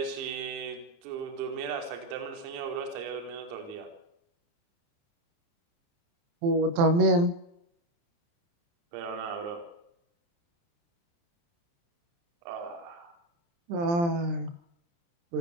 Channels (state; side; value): late; left; 29 ms